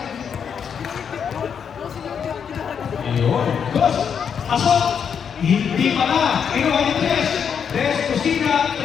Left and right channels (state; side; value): quieter; right; 7.3 dB